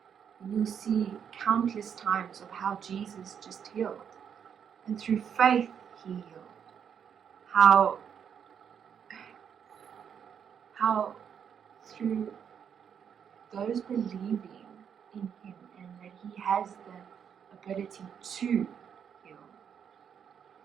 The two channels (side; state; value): left; quieter; 7.9 dB